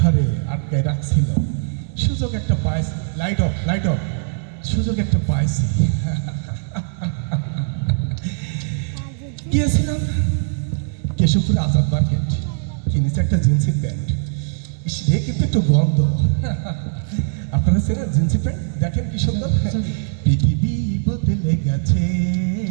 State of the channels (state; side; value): silent; left; digital silence